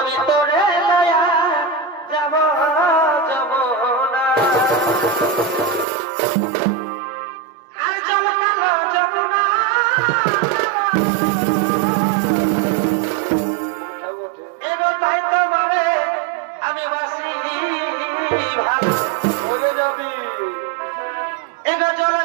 তোরে লয়া যাব যাব না আর জল কালো যাব না এগো তাই তোমারে আমি বাসি ভালো হয়ে যাবি এগো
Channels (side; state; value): left; drops out; at 5.9 s